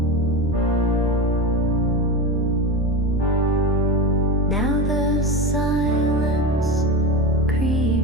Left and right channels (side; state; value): both; normal; correlation 0.22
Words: Now the silence